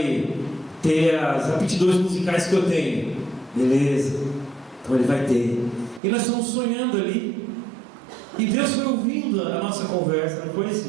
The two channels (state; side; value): drops out; left; at 6.0 s